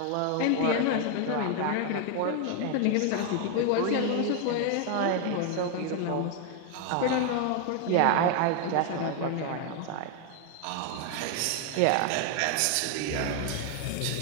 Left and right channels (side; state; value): both; different; correlation 0.01